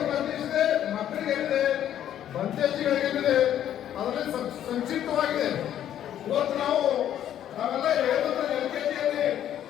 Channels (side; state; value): right; quieter; 10.9 dB